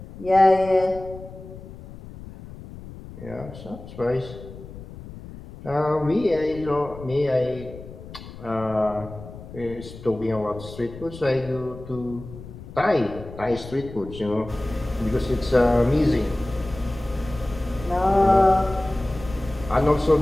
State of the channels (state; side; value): noise; left; rumble, 15 dB below the sound